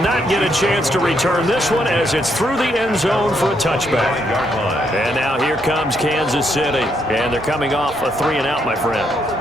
get a chance to return this one as it's through the end zone for a touchback. And now here comes Kansas City. And they're coming off a 3-and-out, my friend.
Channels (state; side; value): normal; both; correlation 0.75